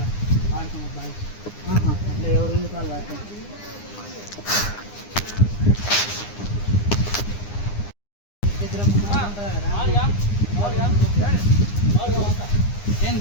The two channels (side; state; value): right; late; 9.8 ms